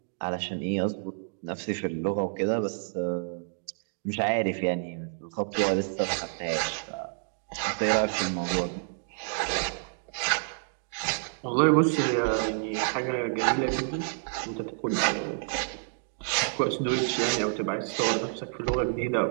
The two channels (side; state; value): left; silent; digital silence